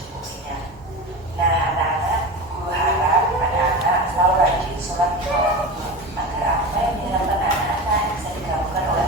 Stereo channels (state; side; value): normal; both; correlation 0.27